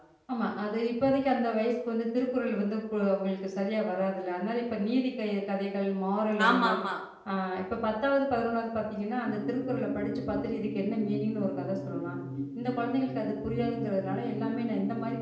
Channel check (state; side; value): identical; both; correlation 1.00